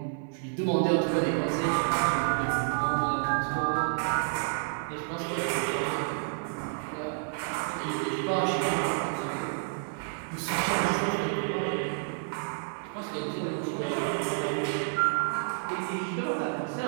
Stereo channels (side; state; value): left; silent; digital silence